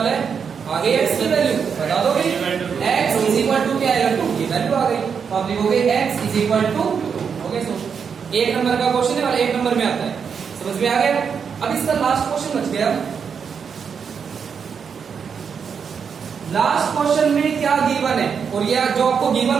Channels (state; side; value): quieter; left; 6.6 dB